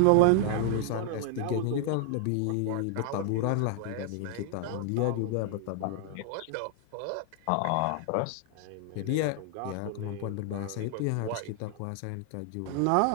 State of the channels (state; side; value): different; both; correlation 0.00